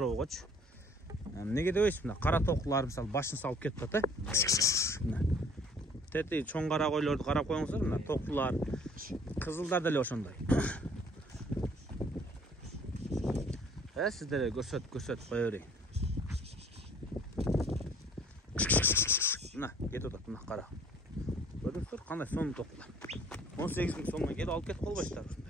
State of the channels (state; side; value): normal; both; correlation 0.56